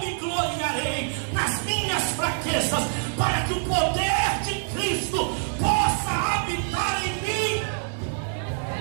me gloriarei nas minhas fraquezas, para que o poder de Cristo possa habitar em mim.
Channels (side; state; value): left; silent; 61 dB below the other